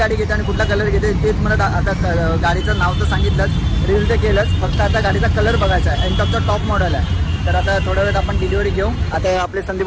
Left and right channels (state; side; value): identical; both; correlation 1.00